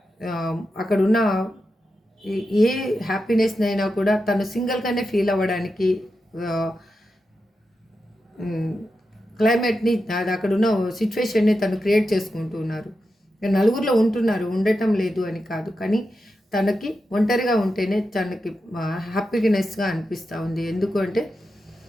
అక్కడున్న ఏ హ్యాపీనెస్నైనా కూడా తను సింగిల్గానే ఫీల్ అవ్వడానికి క్లైమేట్ని అక్కడున్న సిచ్యువేషన్ని తను క్రియేట్ చేసుకుంటూ ఉన్నారు. నలుగురిలో ఉండటం లేదు అని కాదు, కానీ తనకి ఒంటరిగా ఉంటేనే తనకి హ్యాపీనెస్గా అనిపిస్తూ ఉంది. ఎందుకు అంటే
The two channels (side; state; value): both; normal; correlation 0.89